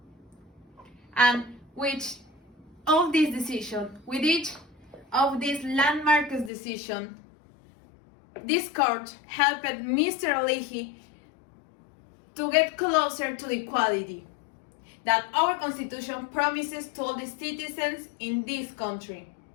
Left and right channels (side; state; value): right; drops out; at 6.5 s